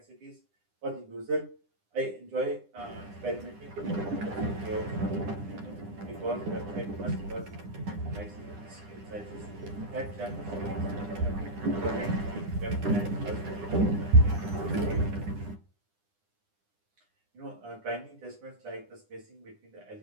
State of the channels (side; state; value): left; late; 9.9 ms